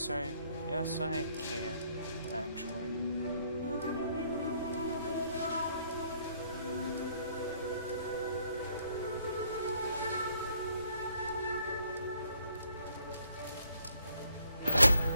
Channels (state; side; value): inverted; both; correlation -0.67